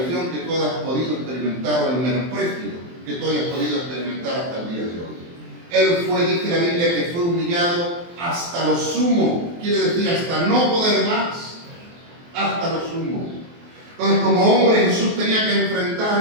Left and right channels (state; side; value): late; left; 23 ms